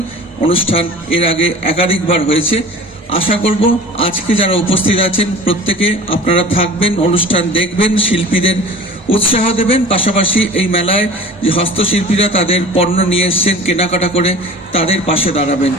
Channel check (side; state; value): both; normal; correlation 0.40